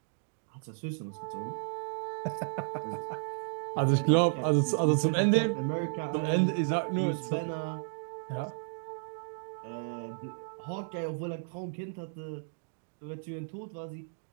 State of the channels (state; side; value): silent; left; digital silence